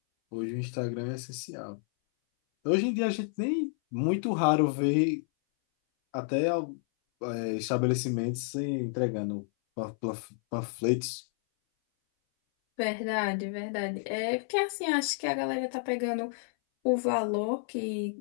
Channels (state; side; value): silent; right; 58 dB below the other